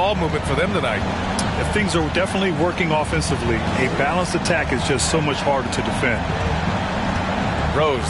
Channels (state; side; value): identical; both; correlation 1.00